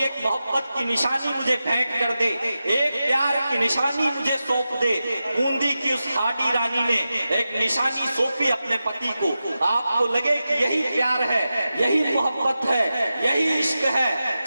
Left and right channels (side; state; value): both; inverted; correlation -0.92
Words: एक मोहब्बत की निशानी मुझे भेंट कर दे, एक प्यार की निशानी मुझे सौंप दे। बूंदी की उस हाडी रानी ने एक निशानी सौंपी अपने पति को। आपको लगे कि यही प्यार है, यही मोहब्बत है, यही इश्क है।